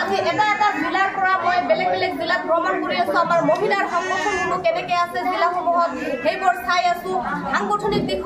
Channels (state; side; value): identical; both; correlation 1.00